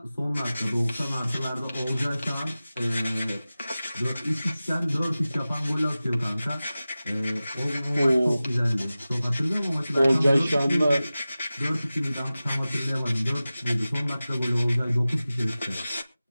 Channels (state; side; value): inverted; both; correlation -0.96